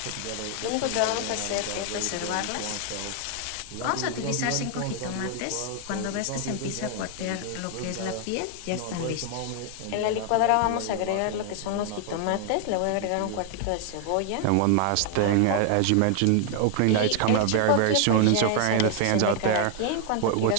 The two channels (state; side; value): different; both; correlation 0.00